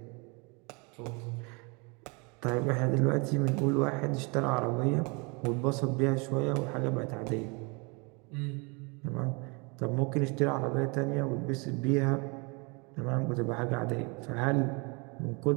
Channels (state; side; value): quieter; left; 30.7 dB